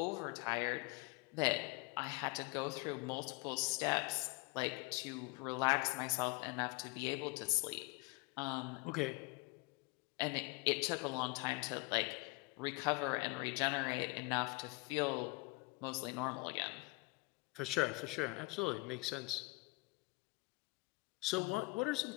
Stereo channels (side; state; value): right; quieter; 25.5 dB